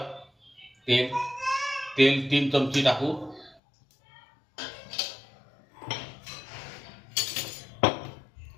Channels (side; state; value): right; drops out; at 3.6 s